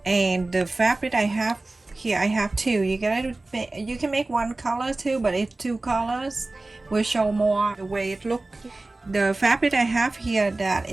And the fabric I have here, I have two. You can make one color too, but if two colors will show more the way it look. The fabric I have here that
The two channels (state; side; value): quieter; left; 3.0 dB